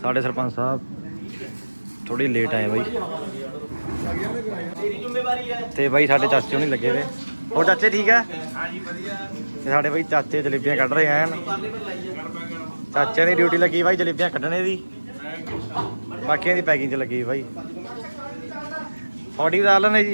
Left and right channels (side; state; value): both; inverted; correlation -1.00